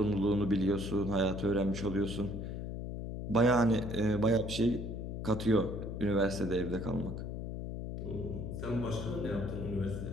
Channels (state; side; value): noise; left; hum, 5 dB below the sound